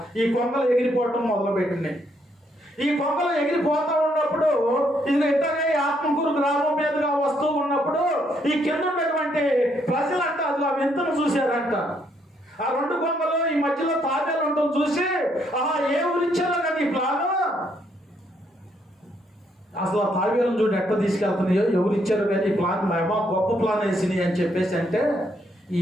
ఈ కొంగలు ఎగిరిపోవటం మొదలుపెట్టినాయి. ఈ కొంగలు ఎగిరిపోతూ ఉన్నప్పుడు ఇది ఇంటనే ఆత్మకూరు గ్రామం మీదుగా వస్తూ ఉన్నప్పుడు ఈ కింద ఉన్నటువంటి ప్రజలంట అది ఆ వింతను చూశారంట. ఆ రెండు కొంగలు ఈ మధ్యలో తాబేలు ఉండటం చూసి ఏ ఊరిచ్చారో కదా ఈ ప్లాను, అసలు ఆ తాబేలను చూడు ఎట్లా తీసుకెళ్తున్నాయో, ఎవరు ఇచ్చారు కానీ ఈ ప్లాన్ ఏమో గొప్ప ప్లాన్ వేసినాయి అని చెప్పేసి అంటే ఈ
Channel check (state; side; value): normal; both; correlation 0.73